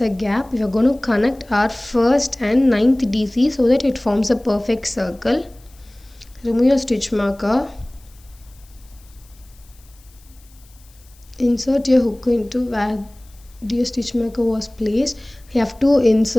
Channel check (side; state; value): left; noise; hiss, 28 dB below the sound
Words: a gap. We are going to connect our first and ninth DC so that it forms a perfect circle. Remove your stitch marker. Insert your hook into where your stitch marker was placed. You have to